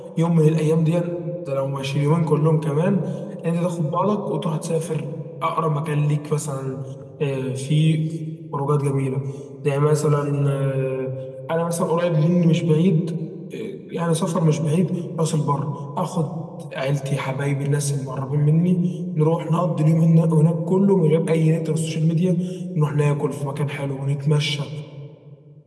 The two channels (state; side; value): identical; both; correlation 1.00